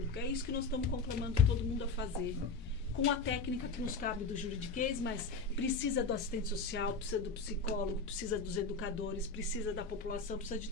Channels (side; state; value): right; quieter; 4.4 dB